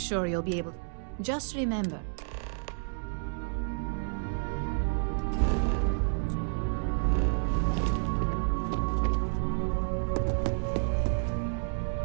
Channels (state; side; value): silent; left; digital silence